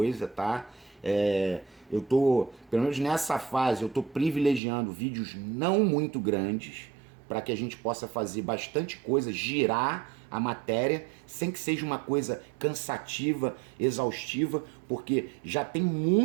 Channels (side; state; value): left; drops out; at 4.6 s